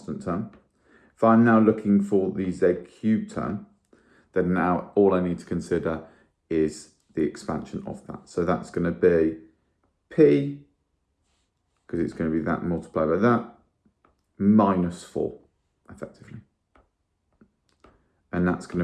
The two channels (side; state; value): both; identical; correlation 1.00